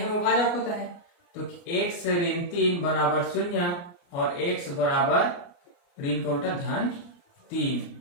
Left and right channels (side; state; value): right; late; 29 ms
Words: वो भाजक होता है। तो x ऋण 3 बराबर 0 और x बराबर ऋण का उल्टा धन 3।